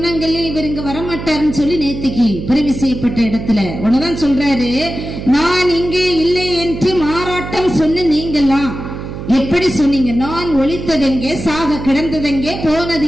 இவர் இங்க வரமாட்டாருன்னு சொல்லி நேத்திக்கு பிறவி செய்யப்பட்ட இடத்துல உடனேதான் சொல்றாரு, நான் இங்கே இல்லை என்று மாறாட்டம் சொன்ன நீங்கெல்லாம் எப்படி சொன்னீங்க? நான் ஒளித்ததெங்கே, சாக கிடந்ததெங்கே, போனது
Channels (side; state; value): right; noise; hum, 8 dB below the sound